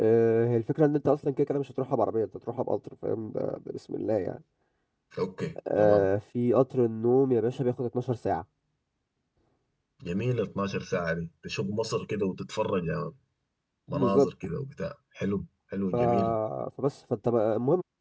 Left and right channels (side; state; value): both; identical; correlation 1.00